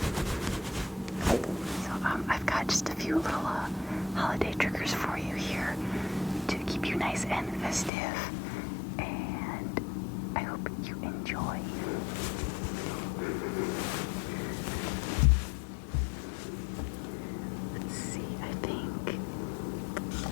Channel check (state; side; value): drops out; right; at 7.9 s